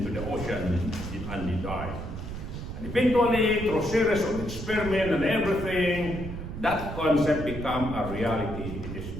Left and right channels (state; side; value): noise; right; rumble, 7 dB below the sound